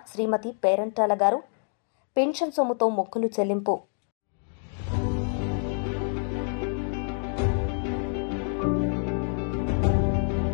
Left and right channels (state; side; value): silent; right; 57 dB below the other